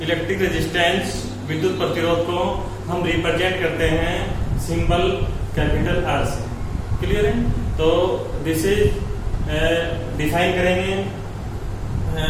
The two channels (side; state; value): both; identical; correlation 1.00